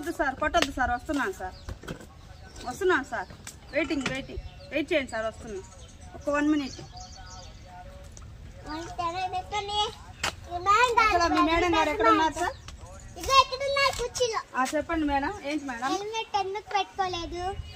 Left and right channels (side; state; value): both; identical; correlation 1.00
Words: సార్, కొట్టొద్దు సార్. వస్తున్నాను సార్. వెయిట్ చేయండి సార్. వస్తున్నా, ఒక 1 minute. మీ మేడం గారు ఎక్కడ ఉన్నారు సార్? చెప్పండి మేడం. ఏంటి మేడం? హెల్మెట్ ఎందుకు పెట్టుకోలేదు?